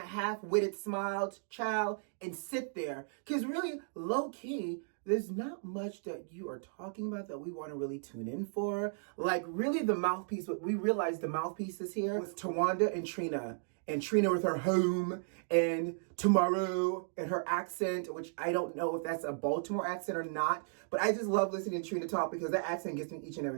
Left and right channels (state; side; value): silent; left; digital silence